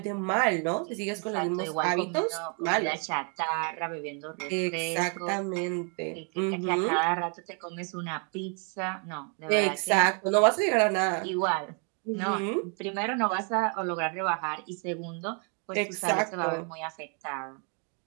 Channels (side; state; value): left; quieter; 39.5 dB